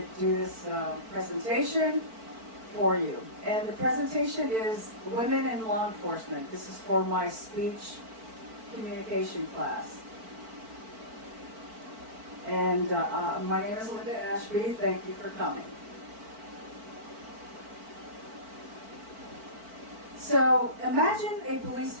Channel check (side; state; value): left; late; 4.5 ms